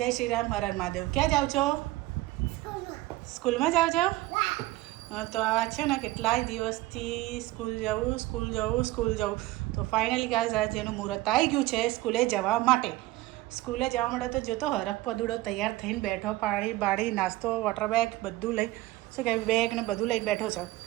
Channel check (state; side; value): quieter; left; 18.1 dB